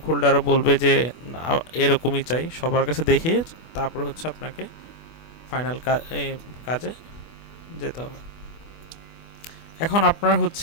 হোল্ডারও বলবে যে এরকমই চাই, সবার কাছে দেখিয়ে তারপর হচ্ছে আপনাকে ফাইনাল কাজে যেতে হবে। এখন আপনার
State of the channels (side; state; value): right; late; 24 ms